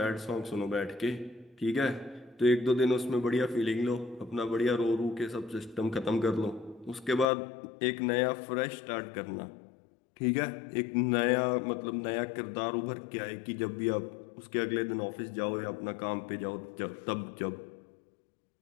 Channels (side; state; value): right; drops out; at 7.2 s